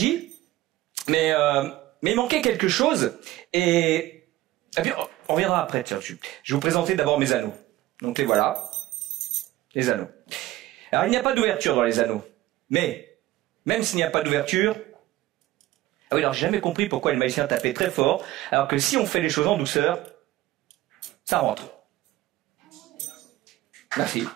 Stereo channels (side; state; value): left; quieter; 16.5 dB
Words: mais il manquait quelque chose, et puis on verra après. Tiens, je vais vous présenter d'abord mes anneaux. Donc les voilà, les anneaux. Alors il n'y a pas d'ouverture dans les anneaux, mais même s'il n'y a pas d'ouverture, ah oui, alors j'ai jamais compris pourquoi les magiciens tapaient très fort, alors que si on fait les choses en douceur, ça rentre. Merci.